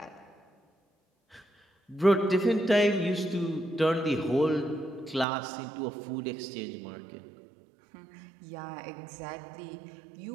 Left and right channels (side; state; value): left; drops out; at 5.2 s